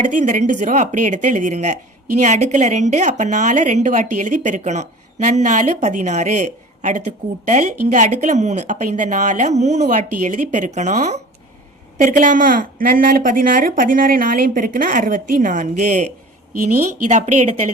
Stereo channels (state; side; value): normal; both; correlation 0.41